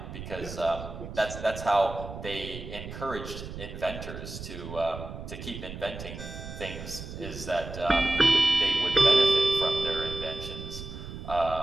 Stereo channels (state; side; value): noise; right; rumble, 10 dB below the sound